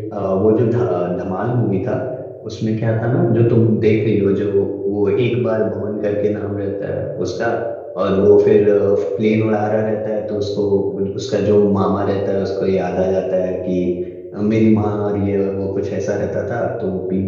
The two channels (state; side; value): identical; both; correlation 1.00